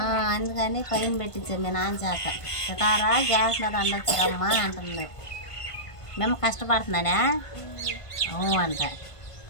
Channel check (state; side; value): late; right; 1.5 ms